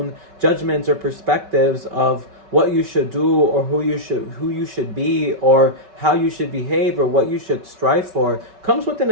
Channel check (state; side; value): late; left; 5.3 ms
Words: judgments or perspectives of what you should do or who you should be or how you should behave or what you should strive for comes with an